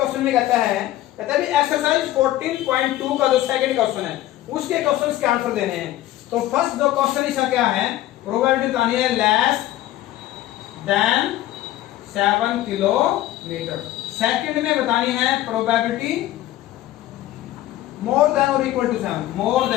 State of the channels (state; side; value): quieter; right; 14.6 dB